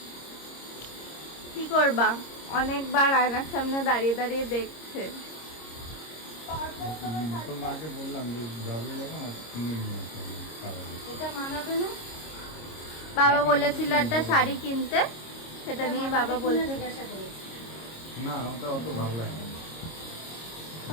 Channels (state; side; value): late; right; 26 ms